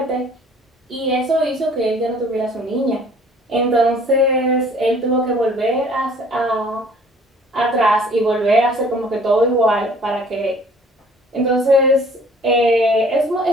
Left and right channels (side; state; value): both; normal; correlation 0.54